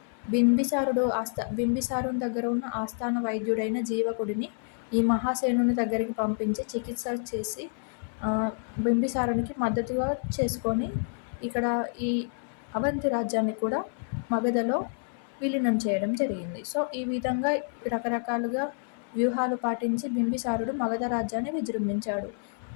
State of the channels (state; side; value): silent; right; 59 dB below the other